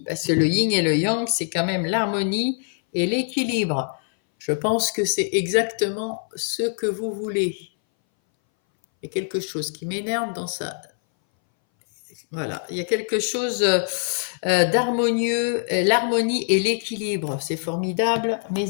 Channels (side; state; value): right; silent; 61 dB below the other